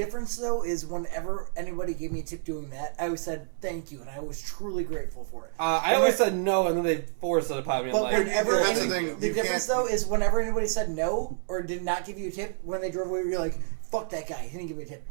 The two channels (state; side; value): silent; left; 59 dB below the other